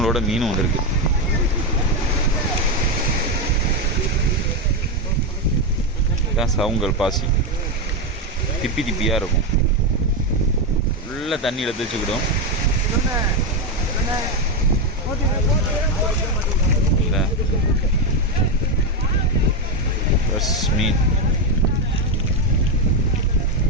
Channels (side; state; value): both; normal; correlation 0.08